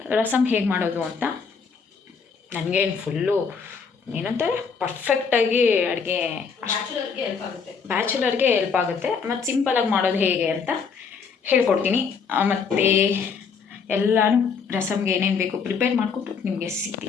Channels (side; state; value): right; quieter; 5.7 dB